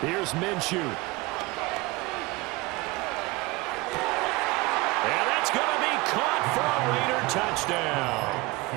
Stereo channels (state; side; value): quieter; left; 22.3 dB